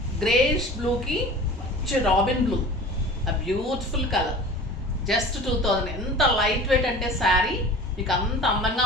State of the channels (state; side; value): normal; both; correlation 0.39